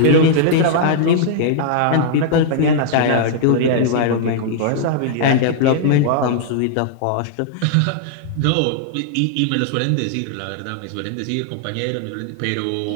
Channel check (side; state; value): both; different; correlation -0.01